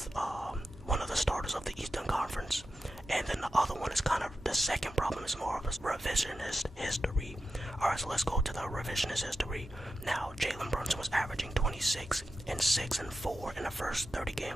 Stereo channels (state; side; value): normal; both; correlation 0.91